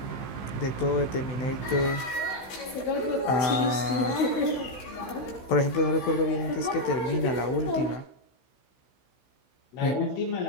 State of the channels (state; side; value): late; right; 16 ms